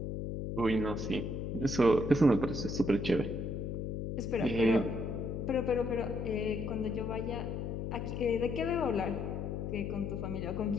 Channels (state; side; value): noise; left; hum, 4 dB below the sound